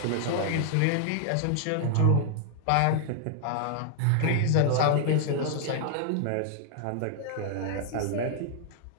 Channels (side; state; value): both; different; correlation 0.00